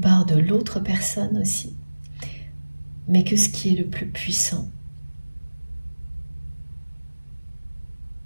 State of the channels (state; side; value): inverted; both; correlation -1.00